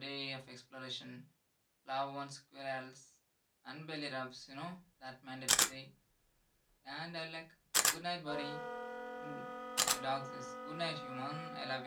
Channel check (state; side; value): identical; both; correlation 1.00